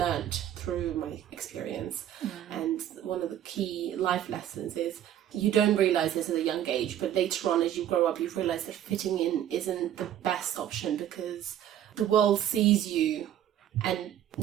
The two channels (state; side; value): quieter; left; 11.2 dB